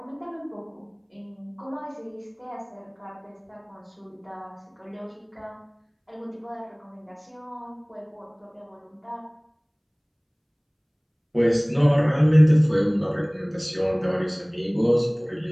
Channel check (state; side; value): identical; both; correlation 1.00